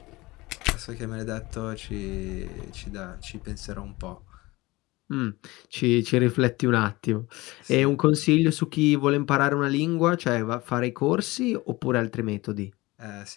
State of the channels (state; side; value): quieter; right; 21.1 dB